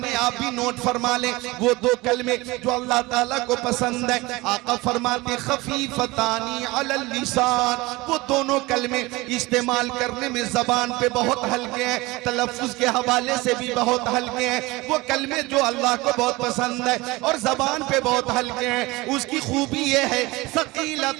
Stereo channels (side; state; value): left; quieter; 21.8 dB